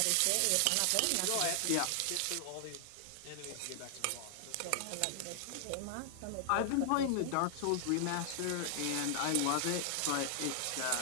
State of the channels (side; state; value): both; different; correlation 0.00